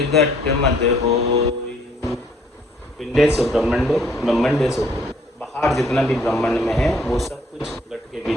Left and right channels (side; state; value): both; normal; correlation 0.63